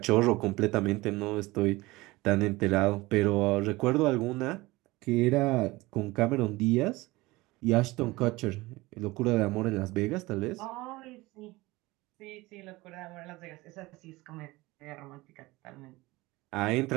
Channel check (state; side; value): quieter; left; 20.8 dB